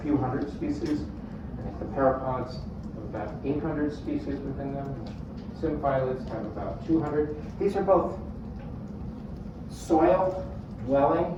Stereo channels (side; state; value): both; identical; correlation 1.00